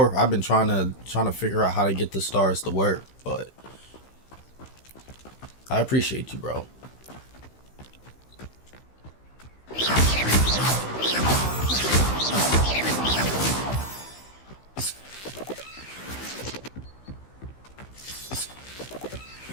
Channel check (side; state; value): right; late; 15 ms